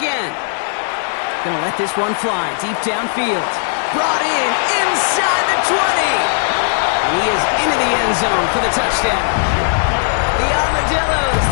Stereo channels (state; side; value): silent; right; digital silence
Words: Gonna let this one fly deep downfield. Brought in inside the 20. And he is into the end zone for the touchdown. The Armadillos